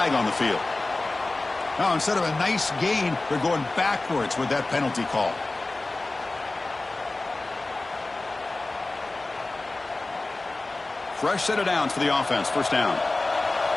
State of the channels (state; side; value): quieter; right; 3.1 dB